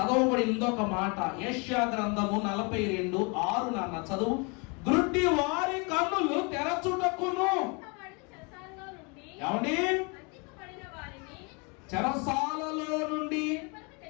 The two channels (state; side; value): quieter; right; 31.6 dB